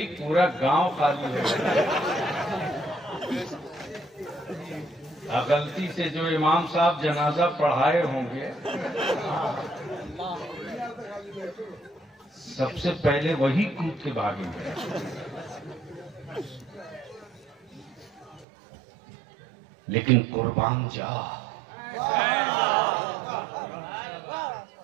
पूरा गांव खाली है। गलती से जो इमाम साहब जनाजा पढ़ाए होंगे, सबसे पहले वही कूद के भागेंगे। लेकिन कुर्बान जा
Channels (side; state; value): left; drops out; at 18.4 s